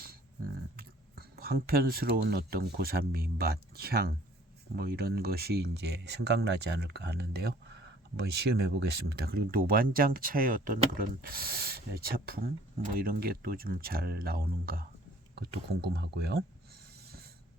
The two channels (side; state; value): both; normal; correlation 0.55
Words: 황편스러운 어떤 고산미, 맛, 향 뭐 이런 것이 이제 생각나지 않을까 하는데요. 한번 시음해 보겠습니다. 그리고 노반장 차의 어떤 그런 차품 뭐 이런 게 또 좀 잘 나오는가 그것도 궁금하고요.